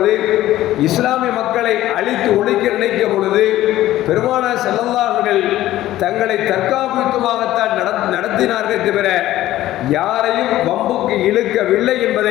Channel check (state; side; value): quieter; right; 14.6 dB